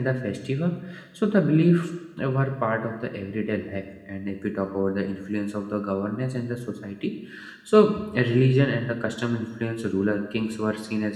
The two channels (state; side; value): identical; both; correlation 1.00